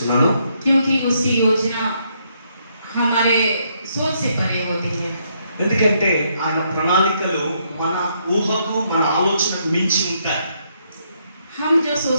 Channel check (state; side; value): inverted; both; correlation -0.74